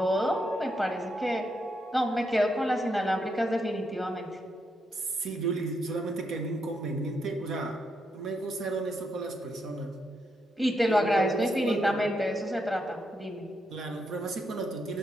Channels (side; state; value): both; normal; correlation 0.80